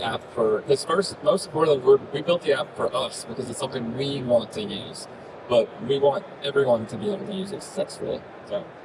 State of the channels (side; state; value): both; identical; correlation 1.00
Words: app for this. First, most importantly, we built the app for us because it's something we want to use, but we want everyone to be able to use it successfully. So